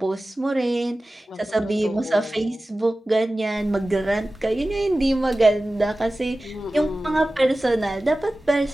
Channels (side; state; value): both; normal; correlation 0.96